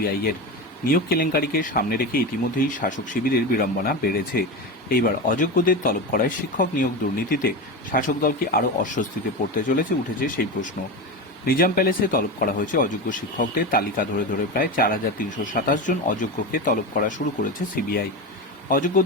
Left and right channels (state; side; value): normal; both; correlation 0.21